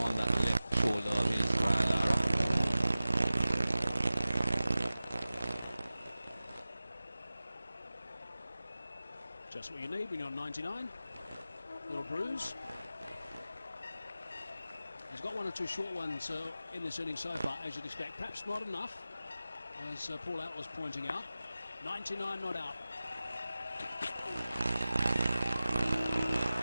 that left shoulder of his Lara. Just what you need when you're on 99. Little bruise. He's got one or two short ones in this inning so far, as you'd expect. Perhaps not enough, as Paul Allat was pointing out. 99 not out.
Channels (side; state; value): both; inverted; correlation -0.94